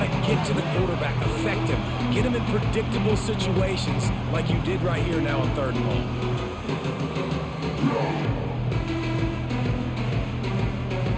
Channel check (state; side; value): identical; both; correlation 1.00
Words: to get to the quarterback, affect him, get him in predictable situations like you did right here now on 3rd and long.